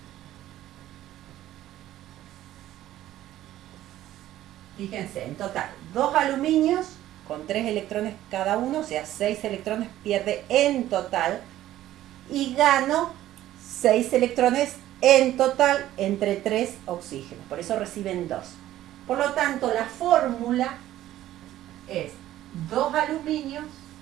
Fíjense, en total, 2 aluminios con 3 electrones cada uno, o sea, 6 electrones pierde en total. Y gano 6 electrones en total entre 3 oxígenos. Por eso reciben 2. Por lo tanto, la fórmula es 2 aluminios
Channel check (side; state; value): left; quieter; 13.7 dB